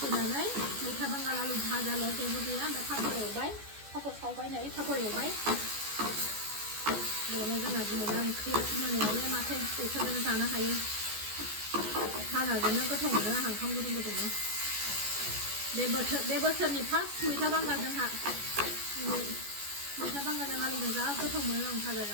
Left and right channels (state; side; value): late; left; 14 ms